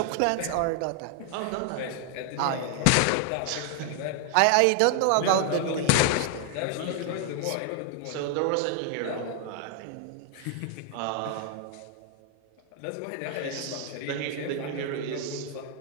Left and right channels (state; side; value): different; both; correlation 0.00